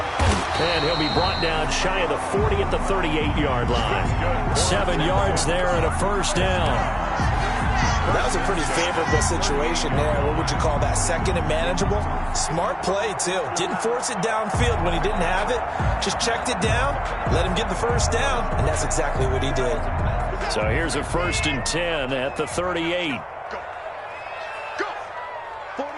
And he'll be brought down shy of the 40 at the 38-yard line. 7 yards there and a first down. Well, that was a pretty favorable situation there. What would you call that? 2nd and manageable? Smart play, too. Didn't force it downfield when he didn't have it. Just checked it down, let him get the first down, and that's exactly what he did. So here's a 1st and 10 at the 38.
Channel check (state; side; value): identical; both; correlation 1.00